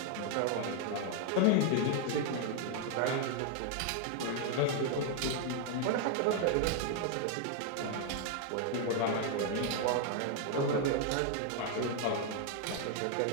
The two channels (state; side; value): different; both; correlation 0.00